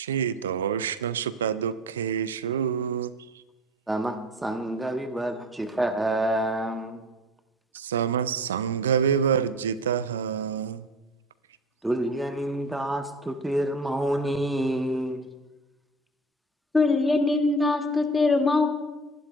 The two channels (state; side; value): normal; both; correlation 0.35